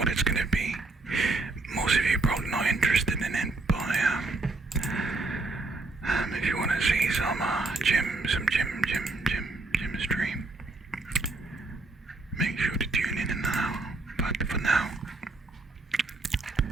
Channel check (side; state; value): left; quieter; 3.3 dB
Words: it's gonna be. Most of you probably not interested in it, but if you want to see some gym stream, make sure to tune in now. But for now,